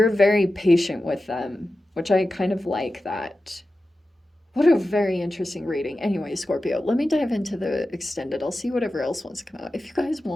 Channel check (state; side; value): normal; both; correlation 0.93